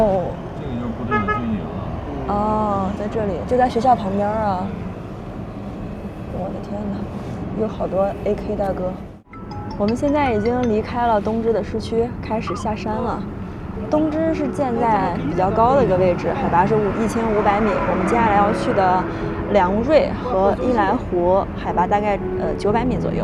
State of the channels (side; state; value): both; identical; correlation 1.00